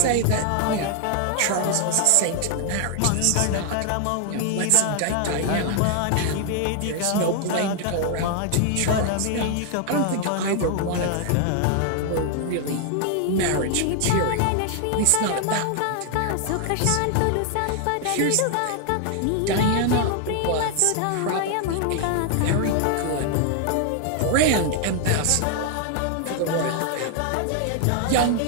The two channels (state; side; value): different; both; correlation 0.00